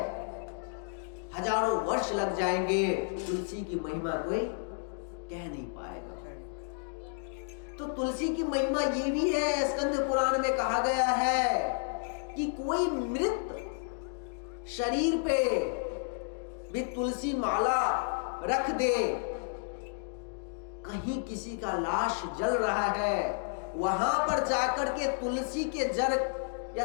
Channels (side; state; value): right; silent; digital silence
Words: हजारों वर्ष लग जाएंगे, तुलसी की महिमा कोई कह नहीं पाएगा। तो तुलसी की महिमा ये भी है, स्कंद पुराण में कहा गया है कि कोई मृत शरीर पे भी तुलसी माला रख दे, कहीं किसी का लाश जल रहा है, वहां पर जाकर के तुलसी के जड़ या